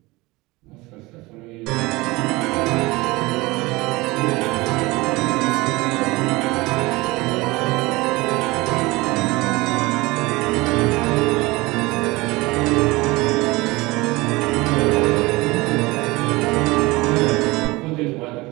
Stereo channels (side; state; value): left; quieter; 22.2 dB